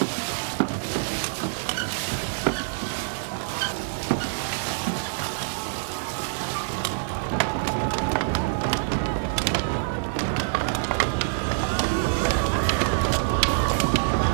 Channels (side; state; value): left; silent; digital silence